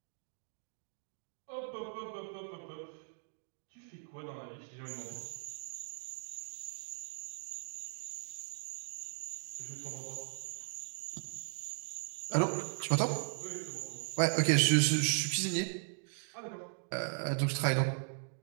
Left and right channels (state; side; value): silent; left; digital silence